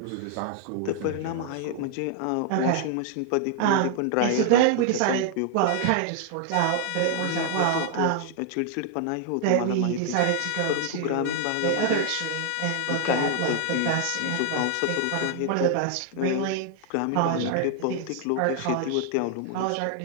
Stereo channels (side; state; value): both; different; correlation 0.00